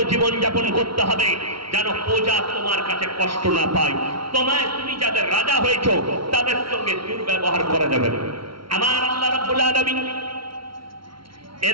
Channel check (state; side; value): late; left; 0.74 ms